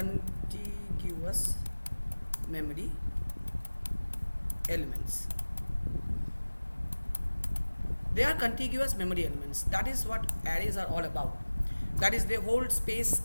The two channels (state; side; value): inverted; both; correlation -1.00